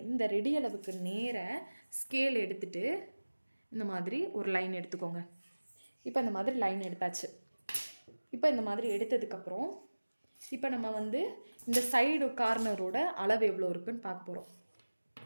இந்த ரெடி அளவுக்கு நேராக ஸ்கேல் எடுத்துகிட்டு இந்த மாதிரி ஒரு லைன் எடுத்துக்கோங்க. இப்போ இந்த மாதிரி லைன் எடுத்தாச்சு. இப்போ இந்த மாதிரி எடுத்ததுக்கப்புறம் இப்போ நம்ம வந்து இந்த சைடு கார்னரோட அளவு எவ்வளோ இருக்குன்னு பார்க்க போகிறோம்.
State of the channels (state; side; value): inverted; both; correlation -1.00